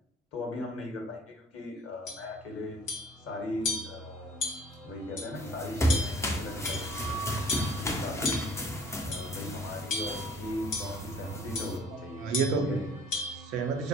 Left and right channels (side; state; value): both; normal; correlation 0.52